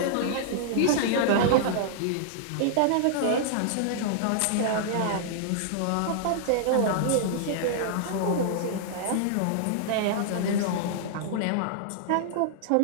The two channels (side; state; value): both; different; correlation -0.01